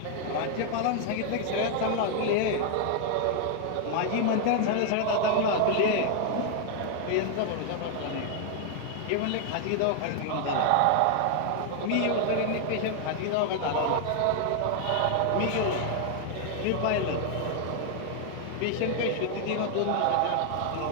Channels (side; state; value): both; different; correlation 0.00